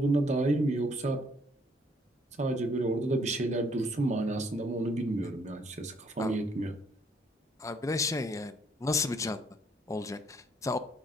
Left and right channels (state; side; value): normal; both; correlation 0.66